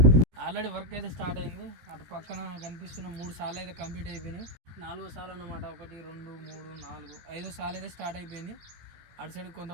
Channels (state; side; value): late; left; 17 ms